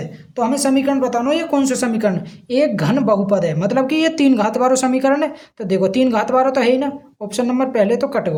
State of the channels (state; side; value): identical; both; correlation 1.00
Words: तो हमें समीकरण बताना है ये कौन सा समीकरण, एक घन बहुपद है, मतलब कि ये 3 घात वाला समीकरण है। तो देखो 3 घात वाला तो है ही ना, ऑप्शन नंबर पहले तो कट